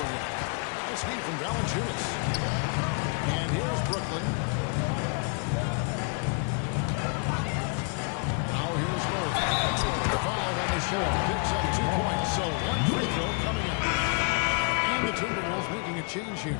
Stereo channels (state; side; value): quieter; right; 36.3 dB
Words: him. Nice feed from Valanciunas. And here's Brooklyn. Now here's Murray. 5 on the shot. Picks up 2 points. So 1 free throw coming up. And the Timberwolves making a change here.